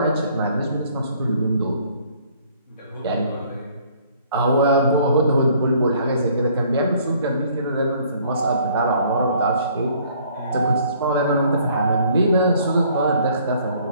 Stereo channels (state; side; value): inverted; both; correlation -0.60